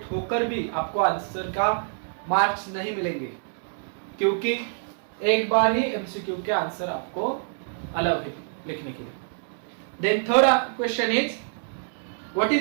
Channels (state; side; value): silent; left; digital silence